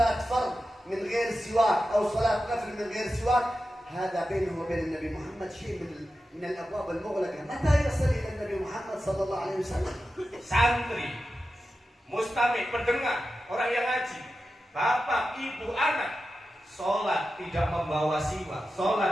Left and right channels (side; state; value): both; normal; correlation 0.92